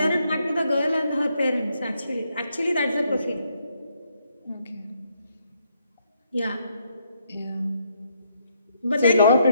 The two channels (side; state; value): both; inverted; correlation -0.75